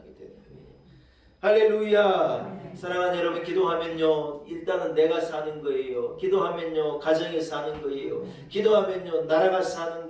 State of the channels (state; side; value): identical; both; correlation 1.00